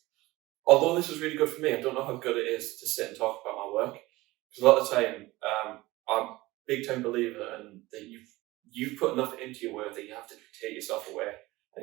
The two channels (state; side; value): quieter; left; 19.6 dB